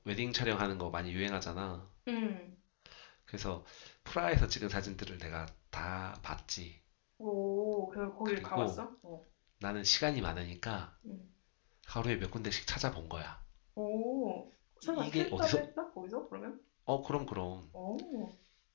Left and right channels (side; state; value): right; silent; digital silence